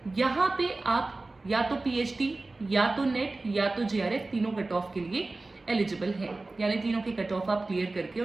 यहाँ पे आप या तो PhD या तो नेट या तो JRF तीनों कट ऑफ के लिए एलिजिबल हैं, यानी तीनों के कट ऑफ आप क्लियर करके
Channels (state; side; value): quieter; left; 3.2 dB